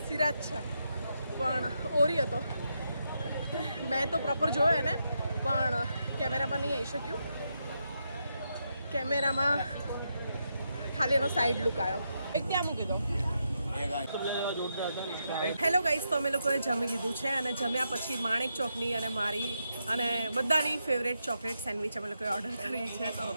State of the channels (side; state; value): both; inverted; correlation -0.82